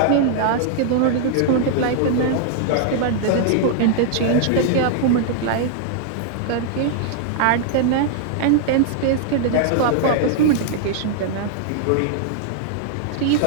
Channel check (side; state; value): both; different; correlation -0.01